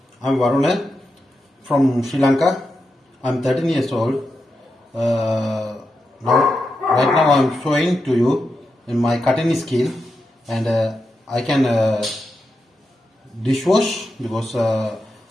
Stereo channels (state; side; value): normal; both; correlation 0.87